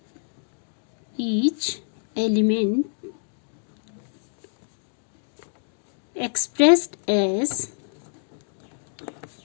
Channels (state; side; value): silent; right; 60 dB below the other